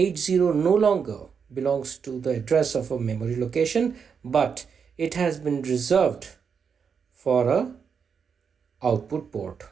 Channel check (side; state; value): left; quieter; 6.4 dB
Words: no longer belongs to the address of a memory location, but it has been reserved for a output port.